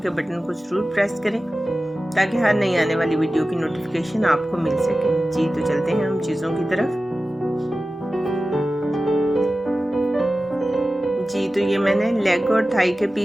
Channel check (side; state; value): both; normal; correlation 0.95